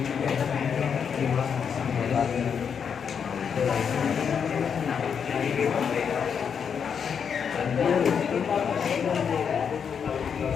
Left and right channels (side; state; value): right; quieter; 7.0 dB